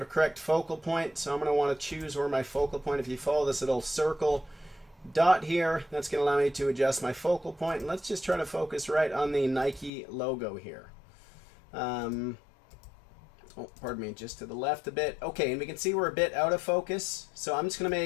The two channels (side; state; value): right; drops out; at 9.9 s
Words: a correct focal point. So I'm going to want to choose where my focal point, if you follow this little circle dot here, that's going to allow me to adjust my focal point. And let's just try to focus right on the Nike logo here. Oh, pardon me, just to the left a bit. Okay, and we can see we're a bit out of focus. So I'm just going to